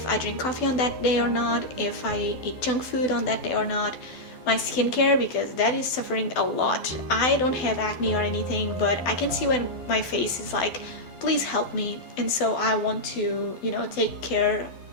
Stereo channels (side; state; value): right; late; 12 ms